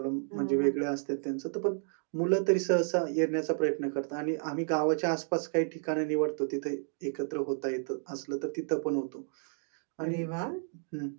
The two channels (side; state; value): left; silent; 57 dB below the other